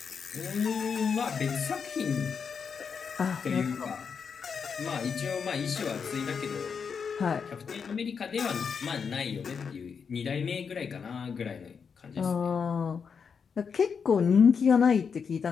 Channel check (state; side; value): quieter; right; 6.2 dB